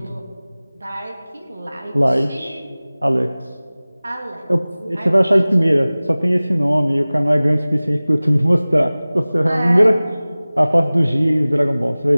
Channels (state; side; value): inverted; both; correlation -0.99